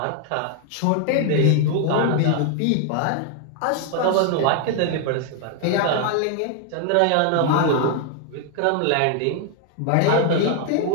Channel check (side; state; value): both; different; correlation 0.00